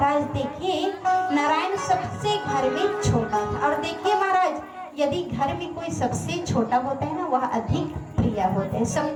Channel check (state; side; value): identical; both; correlation 1.00